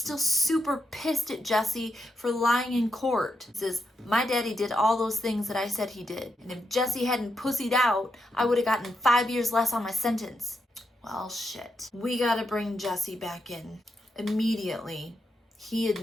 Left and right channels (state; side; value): normal; both; correlation 0.83